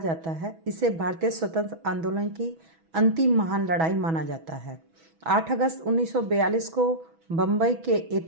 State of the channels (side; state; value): left; late; 6.1 ms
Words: है। इसे भारतीय स्वतंत्र आंदोलन की अंतिम महान लड़ाई माना जाता है। 8 अगस्त 1942 को बम्बई के